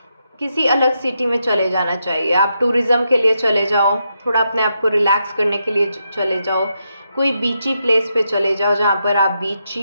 किसी अलग सिटी में चले जाना चाहिए। आप टूरिज़्म के लिए चले जाओ, थोड़ा अपने आप को रिलैक्स करने के लिए चले जाओ, कोई बीची प्लेस पे चले जाओ जहाँ पर आप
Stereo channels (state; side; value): inverted; both; correlation -0.83